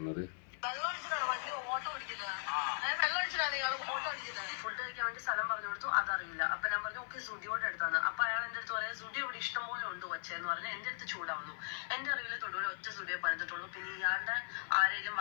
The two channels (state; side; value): silent; right; 52 dB below the other